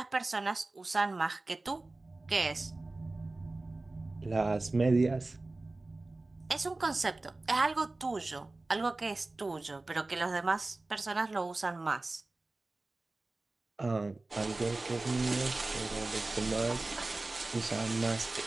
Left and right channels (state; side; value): quieter; left; 3.1 dB